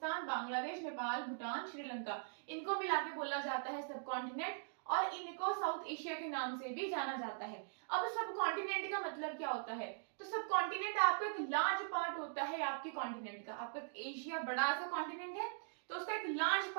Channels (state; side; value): silent; left; digital silence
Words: बांग्लादेश, नेपाल, भूटान, श्रीलंका, इनको मिला के बोला जाता है सब कॉन्टिनेंट, और इनको साउथ एशिया के नाम से भी जाना जाता है। अब सब कॉन्टिनेंट का मतलब क्या होता है, तो सब कॉन्टिनेंट आपका एक लार्ज पार्ट होता है आपके कॉन्टिनेंट का। आपका एशिया बड़ा सा कॉन्टिनेंट है, तो उसका एक लार्ज